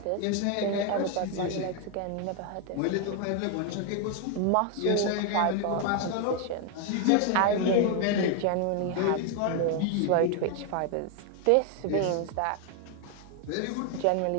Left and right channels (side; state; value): both; different; correlation 0.01